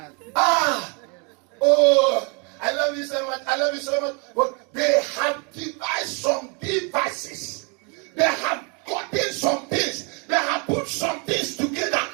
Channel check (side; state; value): left; quieter; 34.1 dB